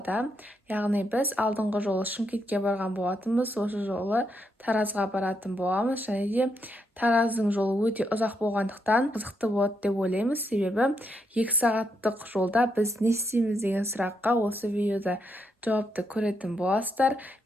Яғни біз алдыңғы жолы Шымкентке барған болатынбыз, осы жолы Таразға баратын боламыз, және де Тараздың жолы өте ұзақ болғандықтан қызықты болады деп ойлаймыз, себебі 2 сағаттық жолда біз не істейміз деген сұраққа осы видеода жауапты көретін боласыздар.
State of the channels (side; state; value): both; normal; correlation 0.80